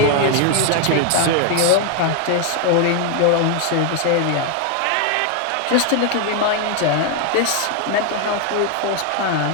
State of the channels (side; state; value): both; different; correlation 0.01